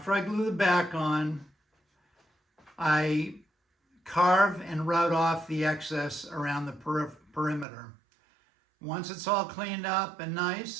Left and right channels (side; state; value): left; drops out; at 7.7 s